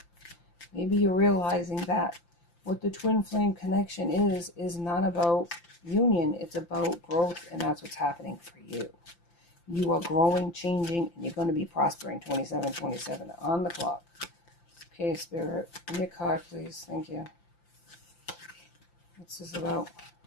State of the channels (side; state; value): right; late; 5.8 ms